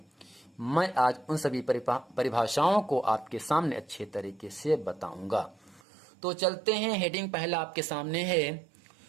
मैं आज उन सभी परिभाषाओं को आपके सामने अच्छे तरीके से बताऊंगा। तो चलते हैं। हेडिंग पहला आपके सामने है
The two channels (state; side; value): drops out; left; at 5.8 s